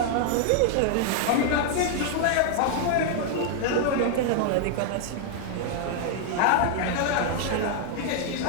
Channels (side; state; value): both; different; correlation -0.01